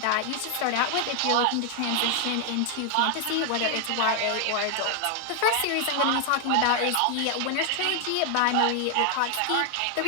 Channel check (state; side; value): different; both; correlation 0.00